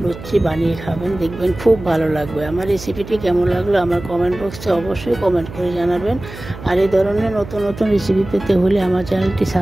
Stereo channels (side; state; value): right; noise; hum, 13 dB below the sound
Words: লুচি বানিয়ে খাবেন, দেখবেন খুব ভালো লাগবে। আমার রেসিপিটি কেমন লাগলো আমার কমেন্ট বক্সে অবশ্যই কমেন্ট করে জানাবেন। আর এই ধরনের নতুন নতুন রেসিপি পেতে হলে আমার চ্যানেলটি